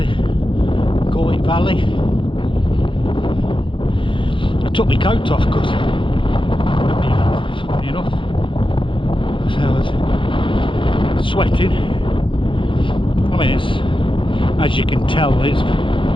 in Coit Valley. I took my coat off because, funny enough, so I was sweating. I mean, it's, as you can tell, it's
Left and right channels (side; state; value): right; late; 0.25 ms